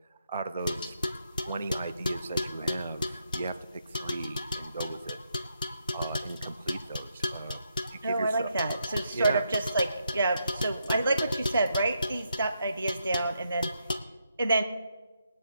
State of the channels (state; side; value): inverted; both; correlation -0.80